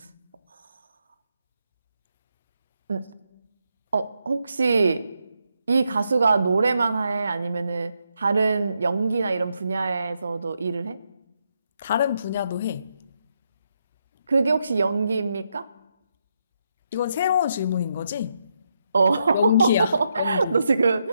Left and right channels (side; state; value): both; inverted; correlation -0.81